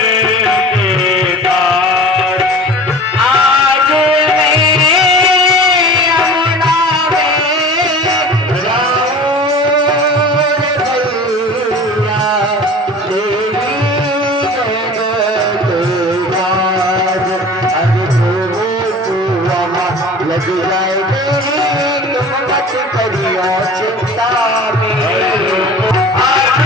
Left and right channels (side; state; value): both; normal; correlation 0.40